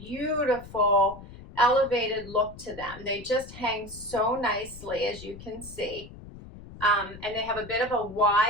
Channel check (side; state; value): left; noise; rumble, 16 dB below the sound